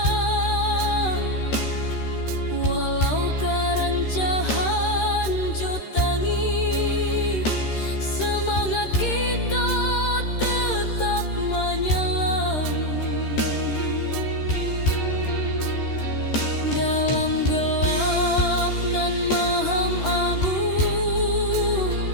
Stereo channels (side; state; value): right; late; 13 ms